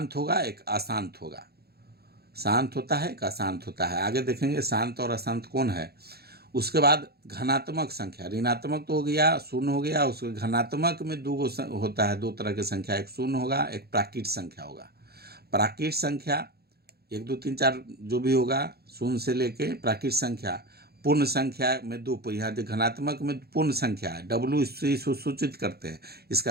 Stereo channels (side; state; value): left; late; 0.46 ms